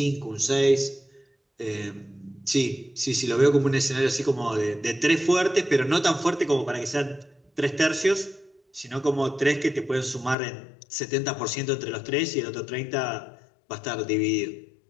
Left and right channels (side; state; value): right; drops out; at 10.4 s